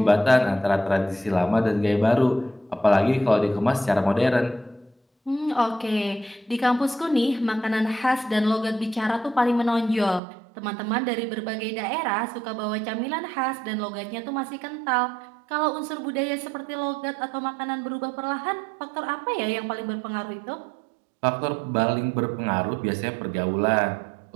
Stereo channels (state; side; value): drops out; left; at 10.2 s